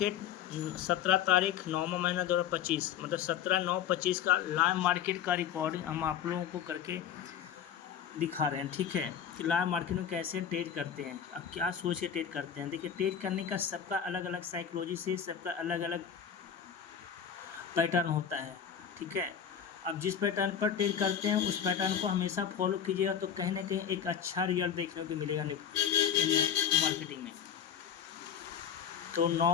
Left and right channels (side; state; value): right; quieter; 8.6 dB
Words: 17 तारीख 9वां महीना 2025 मतलब 17/9/25 का लाइव मार्केट का रिकॉर्डिंग हम आप लोगों को करके दिखा रहे हैं। ठीक है कि लाइव मार्केट में कैसे ट्रेड करते हैं, अब क्या सोच के ट्रेड करते हैं। देखिए ट्रेड करने का सबका अलग अलग साइकोलॉजी से सबका अलग अलग पैटर्न होता है। ठीक है, अब जिस पैटर्न पर ट्रेड करते हैं उस पैटर्न को हमेशा फॉलो कीजिएगा तो कहीं ना कहीं एक अच्छा रिजल्ट देखने को मिलेगा इन मार्केटिंग में। तो